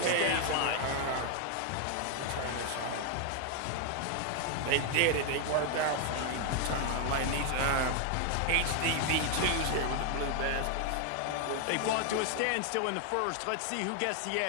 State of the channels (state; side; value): different; both; correlation 0.00